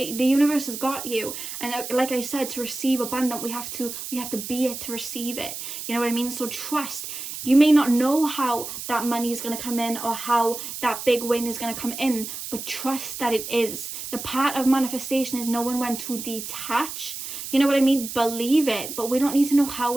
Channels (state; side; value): noise; right; hiss, 8 dB below the sound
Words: the universe has got you, and like I said, to receive abundant, we have to be it to receive it. You know what I mean? So trust. You may not know how that money is going to come in, or how that big win is going to come in, but trust that it is. The part of manifestation is knowing when to detach. You know what I mean? Believe it, but we don't need to know